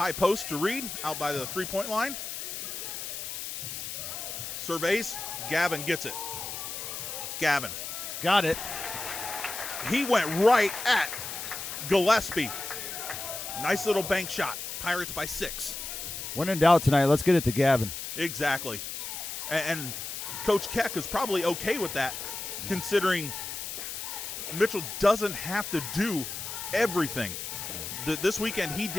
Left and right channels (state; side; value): noise; left; hiss, 6 dB below the sound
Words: post to Reed, out by the 3-point line. Surveys. Gavin gets it. Gavin. Got it. He went right at Gillespie. Nice little bank shot. Pirates by 6. When in doubt tonight, let's get it to Gavin. Exactly. And Coach Keck is probably okay with that, considering Mitchell doesn't have to do everything. This weekend he